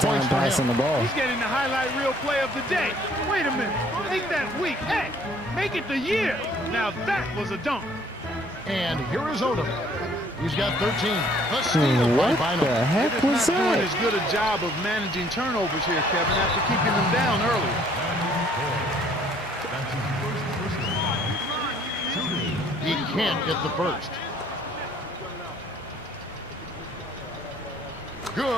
points for him. passing the ball. He's getting the highlight reel play of the day. Wait a minute. Make that week. Heck, make it the year. Now that was a dunk. And here is Odom. He's got 13. The steal by What Bynum. the heck They're was just not doing that? as good a job of managing turnovers here, Kevin, after keeping them down early. That's his first personal foul. Shooting. He can't get the first.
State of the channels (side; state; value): both; normal; correlation 0.60